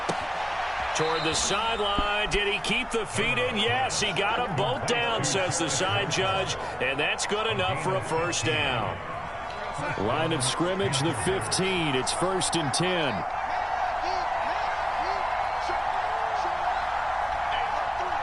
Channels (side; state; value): both; identical; correlation 1.00